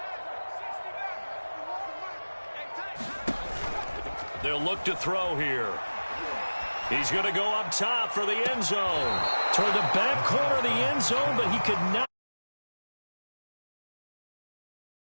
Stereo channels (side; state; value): both; inverted; correlation -1.00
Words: They'll look to throw here. He's going to go up top for the end zone. Toward the back corner of the end zone, but he could not.